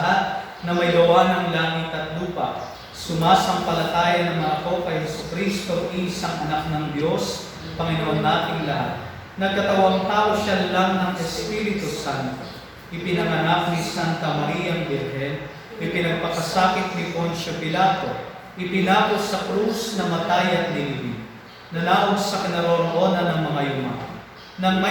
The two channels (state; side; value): identical; both; correlation 1.00